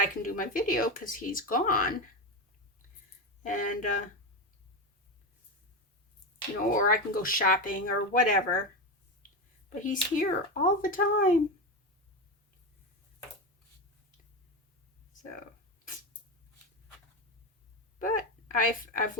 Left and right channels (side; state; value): both; normal; correlation 0.16